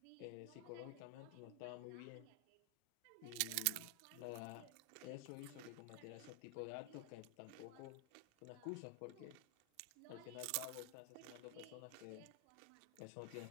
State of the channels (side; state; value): both; different; correlation 0.00